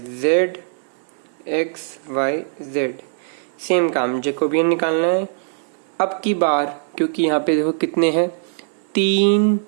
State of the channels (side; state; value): left; silent; 63 dB below the other